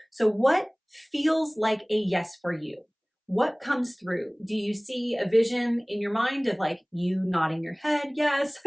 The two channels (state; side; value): identical; both; correlation 1.00